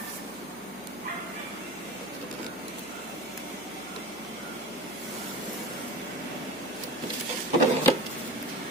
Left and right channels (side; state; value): right; noise; hum, 24 dB below the sound